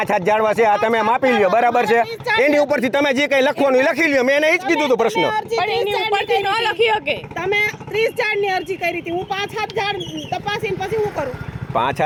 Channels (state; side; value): identical; both; correlation 1.00